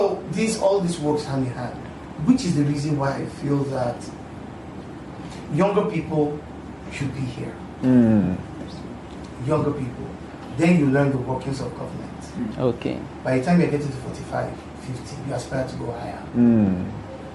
all this works hand in hand. Which is the reason why I feel that younger people should be here. Younger people. Then you learn the workings of government. Okay. By the time you're getting to 45, 50, you aspire to go higher. Do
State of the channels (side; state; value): both; identical; correlation 1.00